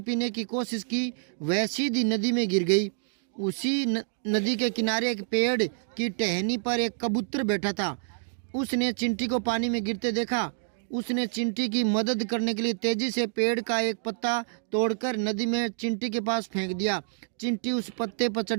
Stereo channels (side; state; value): left; silent; digital silence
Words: पीने की कोशिश की वह सीधी नदी में गिर गई। उसी नदी के किनारे एक पेड़ की टहनी पर एक कबूतर बैठा था। उसने चिंटी को पानी में गिरते देखा। उसने चिंटी की मदद करने के लिए तेजी से पेड़ का एक पत्ता तोड़कर नदी में चिंटी के पास फेंक दिया। चिंटी उस पत्ते पर